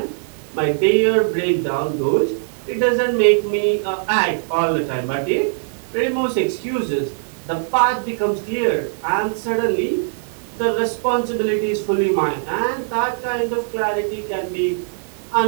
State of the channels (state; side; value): silent; left; digital silence